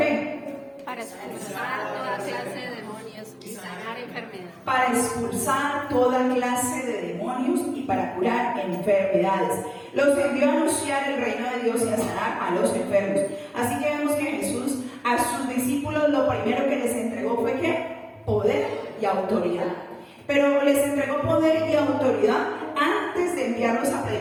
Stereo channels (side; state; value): both; identical; correlation 1.00